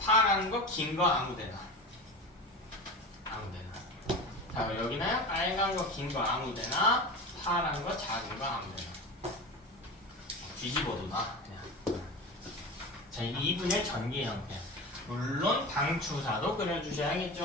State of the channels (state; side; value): normal; both; correlation 0.29